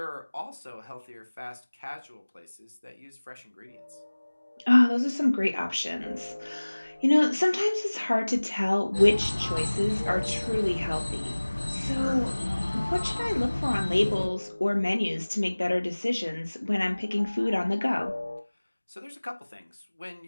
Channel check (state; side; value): inverted; both; correlation -1.00